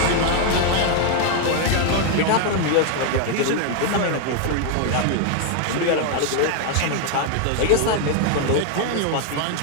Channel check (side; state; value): both; different; correlation 0.00